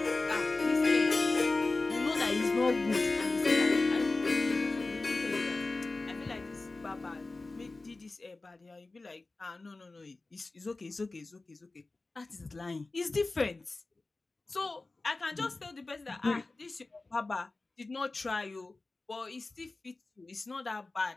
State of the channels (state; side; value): quieter; right; 3.3 dB